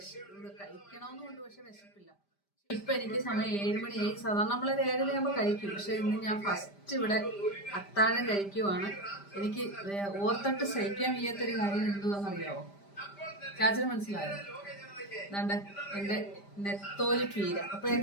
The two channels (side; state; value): right; late; 5.0 ms